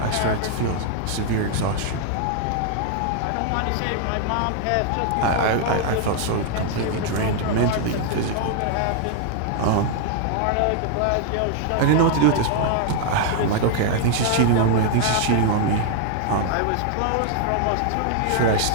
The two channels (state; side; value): different; both; correlation 0.00